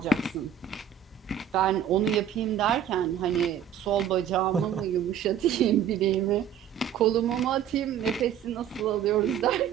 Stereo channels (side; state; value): left; quieter; 9.1 dB